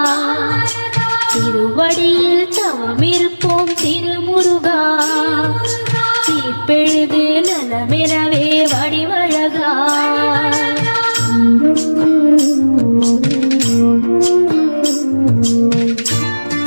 திருவடியில் தவம் இருப்போம் திருமுருகா. தீப்பெழுது நலமெனவே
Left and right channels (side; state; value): both; inverted; correlation -1.00